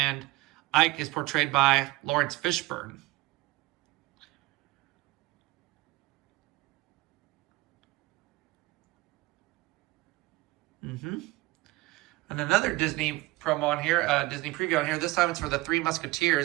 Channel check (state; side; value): quieter; left; 20.1 dB